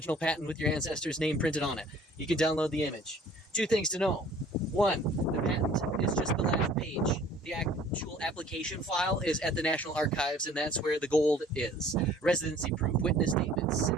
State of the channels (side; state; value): both; normal; correlation 0.52